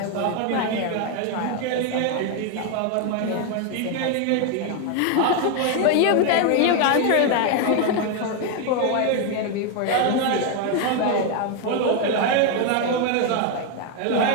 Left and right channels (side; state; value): both; different; correlation 0.01